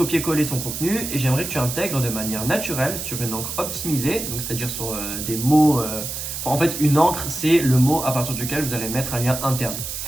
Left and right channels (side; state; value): right; noise; hiss, 6 dB below the sound